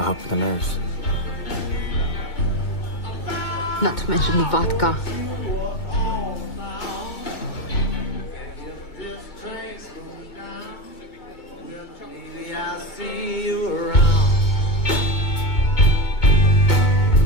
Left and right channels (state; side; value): late; right; 2.2 ms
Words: help with the nerves. Not to mention the vodka.